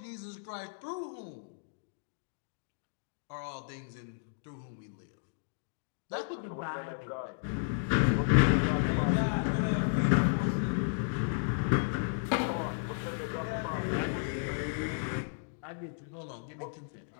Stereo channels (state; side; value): silent; right; digital silence